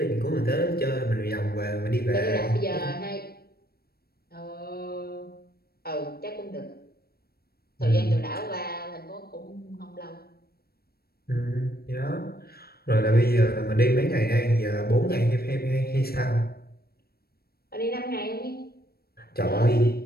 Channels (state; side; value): late; right; 0.45 ms